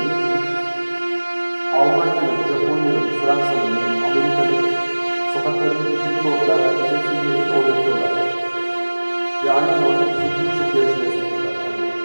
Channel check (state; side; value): inverted; both; correlation -1.00